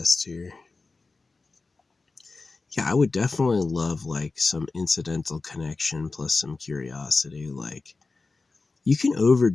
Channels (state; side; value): quieter; right; 3.8 dB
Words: here. Yeah, I would definitely love like some incidental connection plus some curiosity. Like, you can